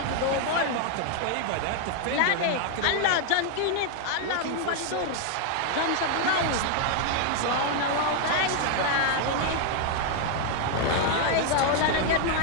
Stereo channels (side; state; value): both; different; correlation 0.00